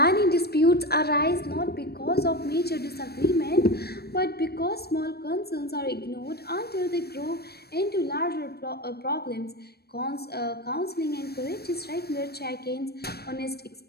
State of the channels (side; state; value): right; late; 0.47 ms